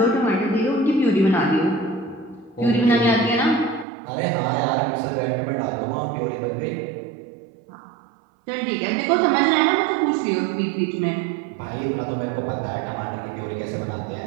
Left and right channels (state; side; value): drops out; left; at 3.9 s